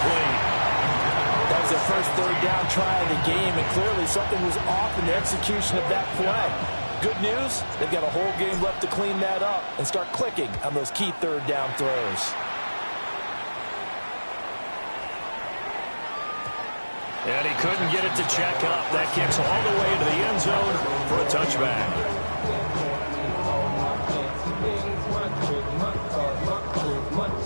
That was their first third down try of the game, and clearly something was off in the execution of that play. Good news, they've got a whole game left to clean that up and start clicking on those key third down throws. And he couldn't get it to check up. That kicks all the way to the end zone for a touchback.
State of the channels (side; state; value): both; inverted; correlation -1.00